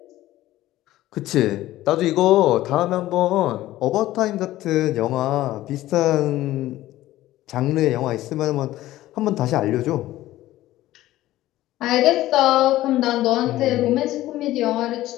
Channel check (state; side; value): quieter; right; 15.4 dB